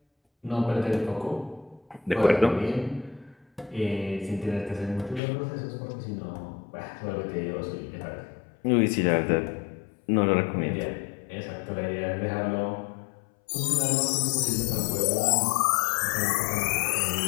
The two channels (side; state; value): right; drops out; at 5.2 s